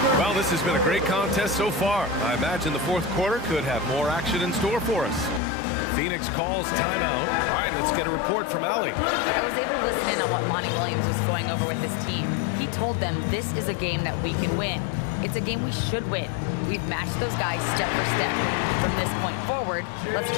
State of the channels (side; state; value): right; drops out; at 5.4 s